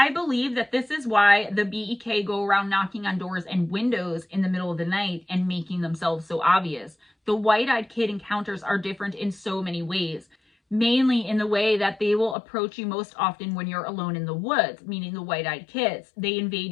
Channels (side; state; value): right; drops out; at 12.4 s